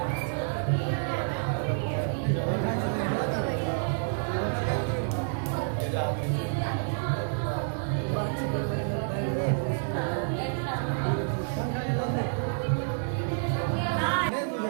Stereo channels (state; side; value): silent; left; digital silence